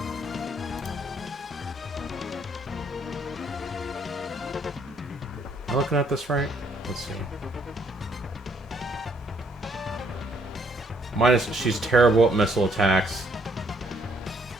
Am I looking at this right? Let's see. She's terrible at missile attacks.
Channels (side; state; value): both; normal; correlation 0.68